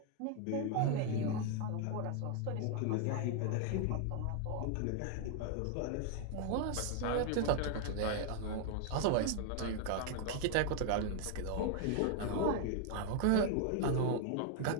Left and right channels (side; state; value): both; different; correlation 0.00